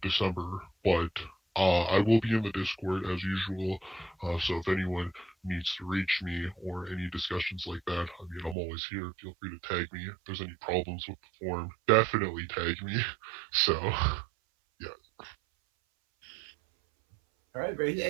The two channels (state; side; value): drops out; left; at 8.6 s